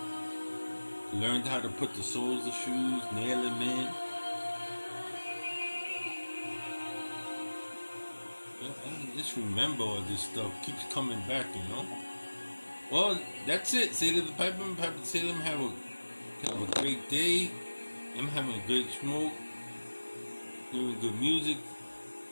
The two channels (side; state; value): both; inverted; correlation -1.00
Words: learned how to put the soles of shoes, nail them in. I just remember all this stuff. Keeps coming back, Well, that's it. Sailor the Piper, Piper the Sailor. Have a great day. I'm having a great smoke. Hearing good music.